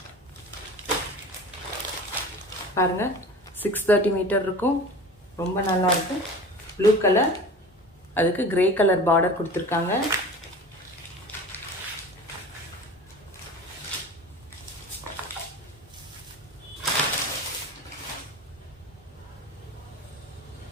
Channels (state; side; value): normal; both; correlation 0.37